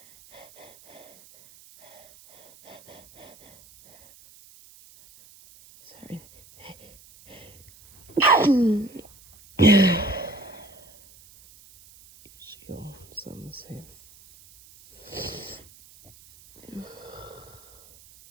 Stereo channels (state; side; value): noise; right; hiss, 24 dB below the sound